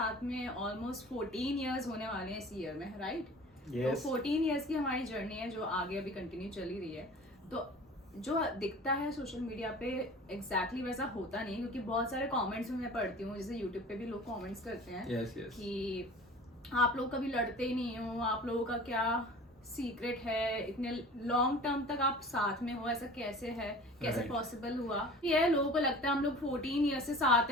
में ऑलमोस्ट 14 इयर्स होने वाले हैं इस ईयर में, राइट? Yes. तो 14 इयर्स की हमारी जर्नी है जो आगे अभी कंटिन्यू चली रही है। तो जो दिखता है सोशल मीडिया पे एग्जैक्टली वैसा होता नहीं, क्योंकि बहुत सारे कमेंट्स मैं पढ़ती हूँ, जैसे यूट्यूब पे भी लोग कमेंट्स करते हैं कि आप लोग कभी लड़ते ही नहीं हो, आप लोगों का क्या सीक्रेट है, इतने लॉन्ग टर्म तक आप साथ में हो, ऐसा कैसे है, कैसे पॉसिबल हुआ? ये लोगों को लगता है हम लोग 14 ईयर से साथ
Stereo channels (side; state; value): both; normal; correlation 0.42